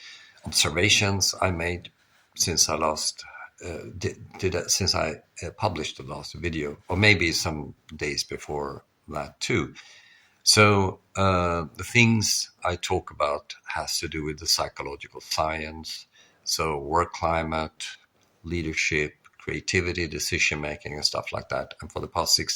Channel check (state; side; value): identical; both; correlation 1.00